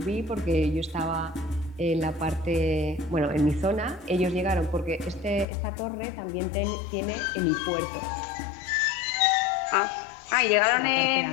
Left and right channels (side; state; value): right; drops out; at 5.5 s